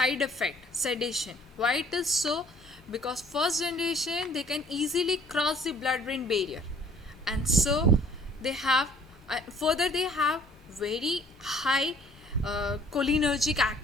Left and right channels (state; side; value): normal; both; correlation 0.56